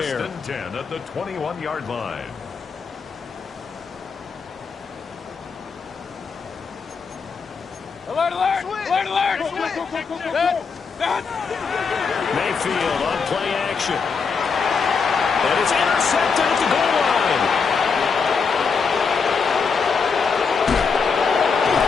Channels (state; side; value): quieter; right; 5.4 dB